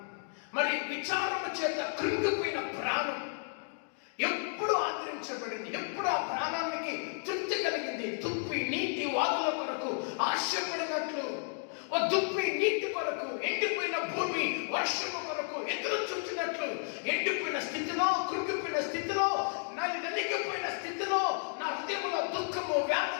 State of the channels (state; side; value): silent; right; 56 dB below the other